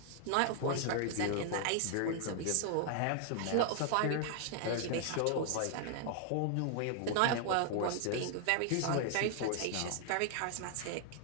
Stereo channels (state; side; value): different; both; correlation 0.00